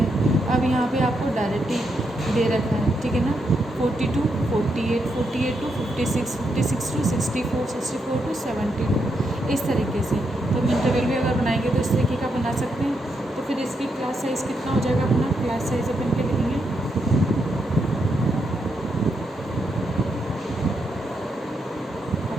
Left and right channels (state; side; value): normal; both; correlation 0.81